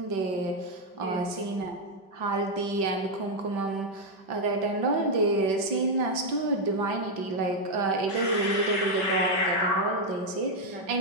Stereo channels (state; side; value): late; left; 5.2 ms